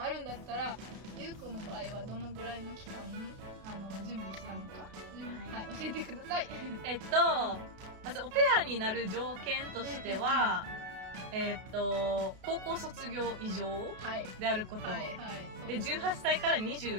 あるんだったら、ゆうこの場合はどのぐらいの期間準備したのか、はい、教えてください。まずオペアになる条件としては、高校卒業以上であること、で18歳から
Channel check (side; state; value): left; late; 32 ms